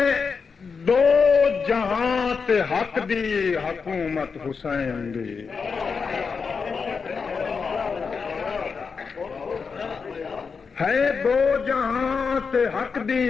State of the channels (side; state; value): right; quieter; 5.4 dB